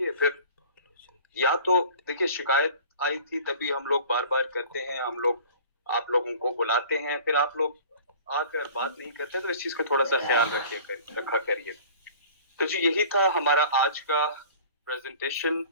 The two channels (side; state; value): both; inverted; correlation -0.45